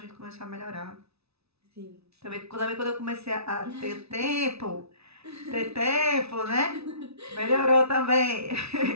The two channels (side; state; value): left; late; 0.79 ms